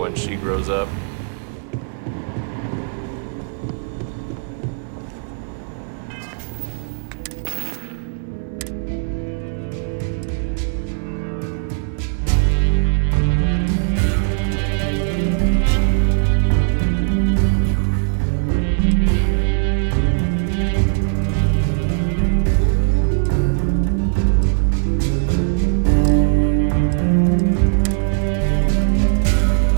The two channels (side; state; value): left; silent; 60 dB below the other